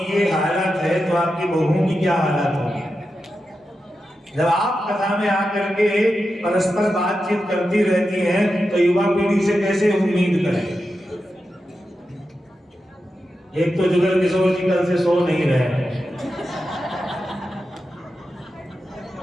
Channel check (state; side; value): normal; both; correlation 0.90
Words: ये हालत है तो आपकी बहुओं की क्या हालत होगी? जब आप कथा में आकर के परस्पर बातचीत करती रहती हैं तो युवा पीढ़ी से कैसे उम्मीद करें? एक तो जुगल किशोर जी कल से सो नहीं रहे हैं।